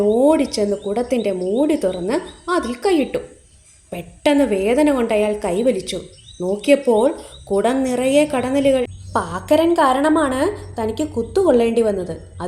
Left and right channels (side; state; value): both; identical; correlation 1.00